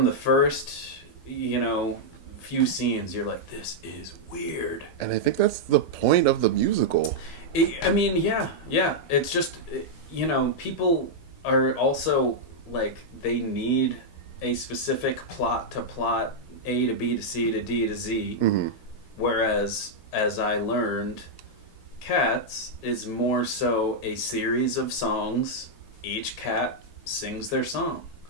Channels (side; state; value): right; late; 13 ms